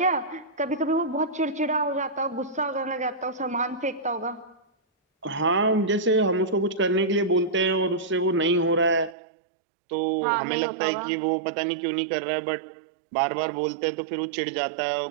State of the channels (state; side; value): drops out; left; at 9.2 s